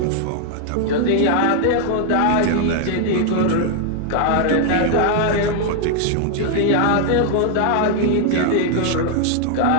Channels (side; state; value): both; different; correlation 0.00